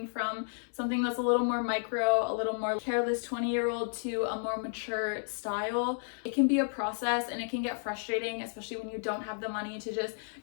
from something that's a little more micro, a little more careless 20-year-old to a more mature style, it can be a process and it can get frustrating, especially when you don't have the money to just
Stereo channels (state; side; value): silent; right; digital silence